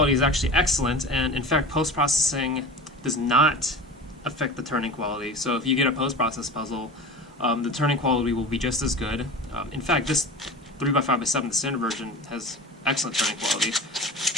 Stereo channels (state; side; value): normal; both; correlation 0.33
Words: is actually excellent, and in fact post-processing does not affect the turning quality. So if you get a post-processed puzzle, the turning quality will be just as good. In fact, this 3x5x7, the standard version, has excellent turning quality.